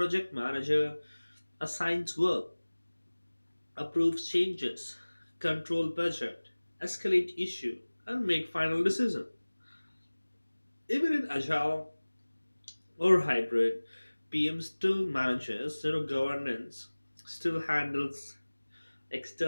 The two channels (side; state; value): both; inverted; correlation -1.00